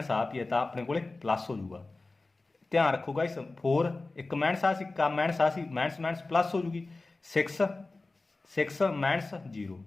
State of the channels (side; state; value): right; quieter; 3.4 dB